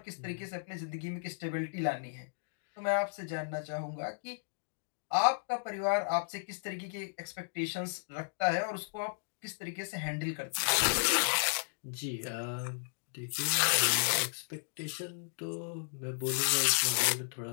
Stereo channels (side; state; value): right; silent; digital silence